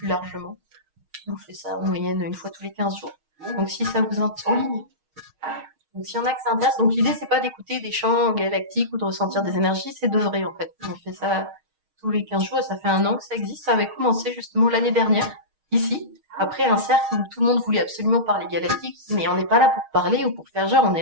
largement. On fait ça en moyenne une fois tous les 15 jours. Donc si ça vous intéresse en ligne. Donc s'il y en a que ça intéresse, donc l'idée c'est pas d'écouter des chants galactiques ou de ressentir des énergies, c'est d'œuvrer en fait. On fait ça tous les 15 jours et ça fait 1 an que ça existe. Ça avait commencé justement l'année dernière, ici, après un cercle où tout le monde voulait absolument parler galactique, mais on n'est pas là pour parler ou pour faire genre, on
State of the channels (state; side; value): late; left; 6.4 ms